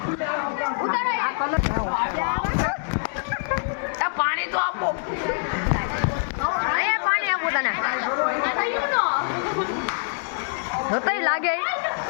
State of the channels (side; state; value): right; silent; digital silence